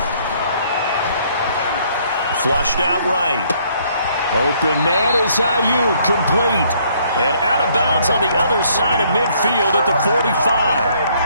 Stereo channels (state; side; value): inverted; both; correlation -0.65